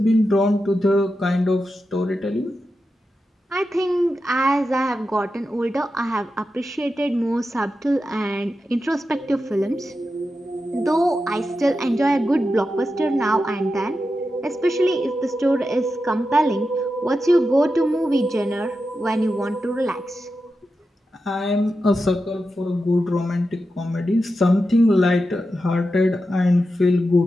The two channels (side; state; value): both; normal; correlation 0.90